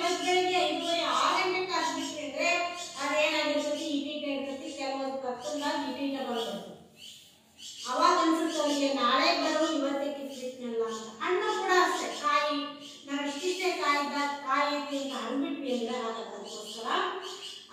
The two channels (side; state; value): both; identical; correlation 1.00